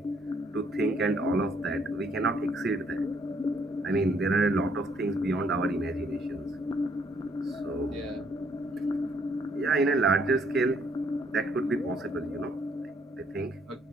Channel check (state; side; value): normal; both; correlation 0.67